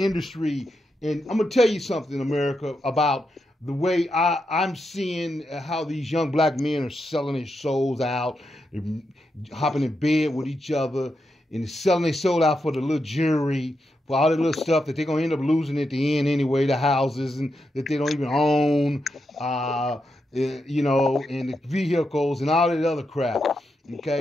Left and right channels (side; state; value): both; normal; correlation 0.85